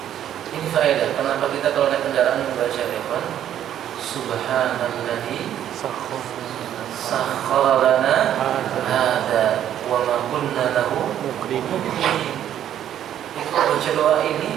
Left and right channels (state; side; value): quieter; left; 10.7 dB